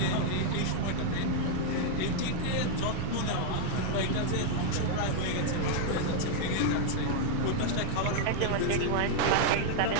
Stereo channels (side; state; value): both; different; correlation 0.00